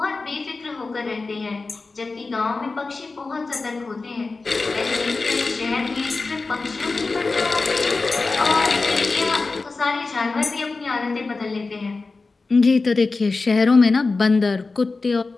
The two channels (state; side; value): quieter; right; 3.8 dB